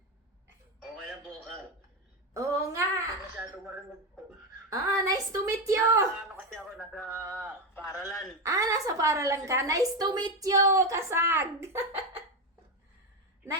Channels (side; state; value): both; normal; correlation 0.12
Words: Okay lang po ka. Oo nga. Masyado marinig po. Nice to meet you! Ano kasi ako nasa paaralan. Nasa paralan ka. Nice to meet you, Kasag!